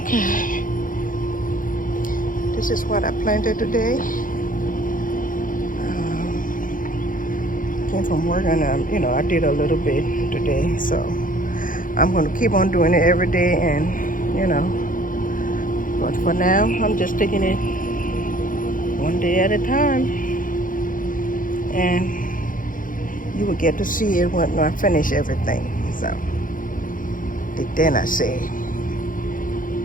this is what I planted today. Came from work and I did a little bit today, so I'm going to keep on doing it every day, and but for now I'm just taking it one day at a time, and you will get to see it when I finish everything. So then I say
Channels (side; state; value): right; late; 0.39 ms